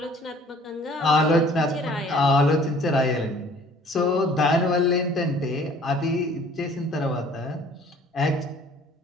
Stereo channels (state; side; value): normal; both; correlation 0.54